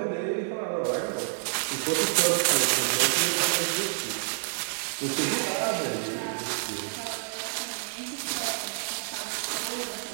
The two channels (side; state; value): left; silent; digital silence